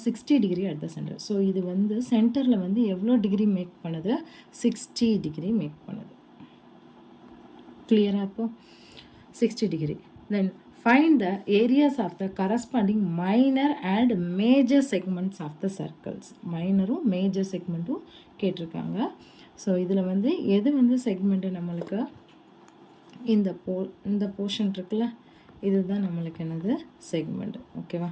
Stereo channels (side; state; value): both; identical; correlation 1.00